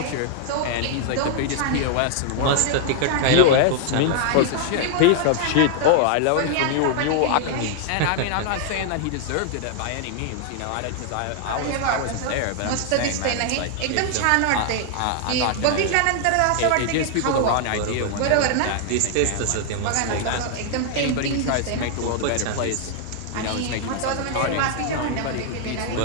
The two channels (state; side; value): different; both; correlation 0.00